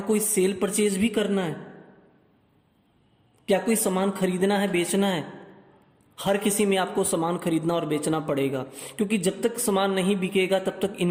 कोई सेल परचेज भी करना है, क्या कोई सामान खरीदना है, बेचना है। हर किसी में आपको सामान खरीदना और बेचना पड़ेगा, क्योंकि जब तक सामान नहीं बिकेगा तब तक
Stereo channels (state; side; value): identical; both; correlation 1.00